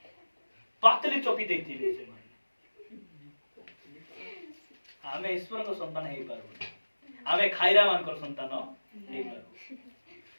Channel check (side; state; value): both; inverted; correlation -1.00